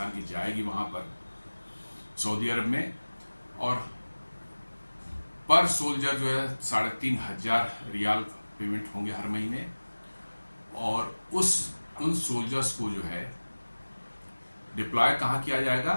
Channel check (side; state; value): both; inverted; correlation -1.00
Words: की जाएगी वहाँ पर सऊदी अरब में, और पर सोल्जर जो है 3,500 रियाल पेमेंट होंगे हर महीने, और उन सोल्जर्स को जो है डिप्लॉय कहाँ किया जाएगा?